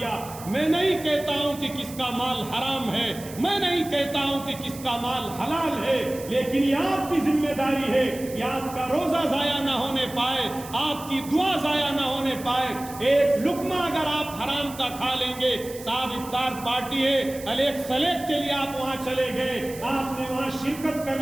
میں نہیں کہتا ہوں کہ کس کا مال حرام ہے، میں نہیں کہتا ہوں کہ کس کا مال حلال ہے، لیکن یہ آپ کی ذمہ داری ہے کہ آپ کا روزہ ضائع نہ ہونے پائے، آپ کی دعا ضائع نہ ہونے پائے۔ ایک لقمہ اگر آپ حرام کا کھا لیں گے، صاحب افطار پارٹی ہے، الیک سلیک کے لیے آپ وہاں چلے گئے، آپ نے وہاں شرکت کر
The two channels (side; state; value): right; noise; hiss, 15 dB below the sound